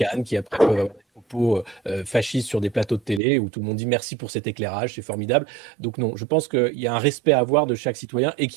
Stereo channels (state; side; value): drops out; left; at 3.2 s